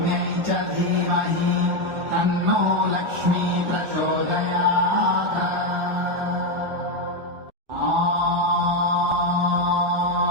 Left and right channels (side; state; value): left; late; 1.4 ms